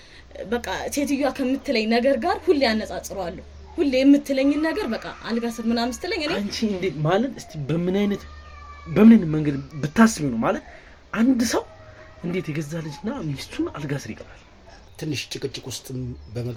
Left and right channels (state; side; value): identical; both; correlation 1.00